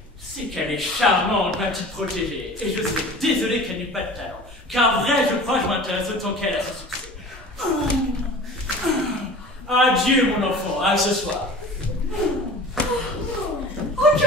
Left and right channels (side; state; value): both; normal; correlation 0.40